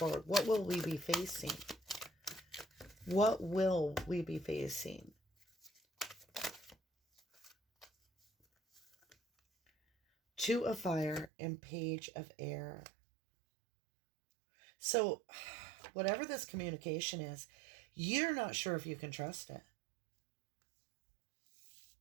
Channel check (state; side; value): drops out; left; at 11.3 s